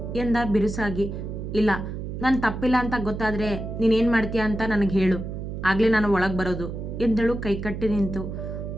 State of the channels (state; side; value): noise; right; hum, 6 dB below the sound